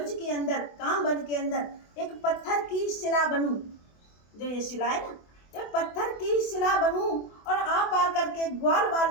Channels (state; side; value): late; right; 24 ms